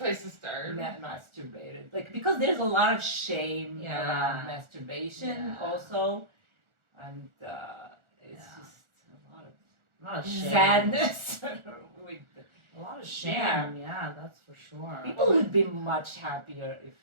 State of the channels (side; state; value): left; late; 1.4 ms